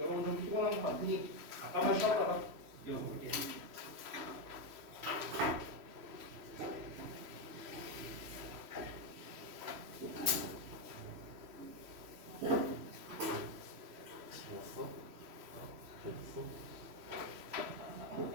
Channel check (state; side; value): late; left; 3.1 ms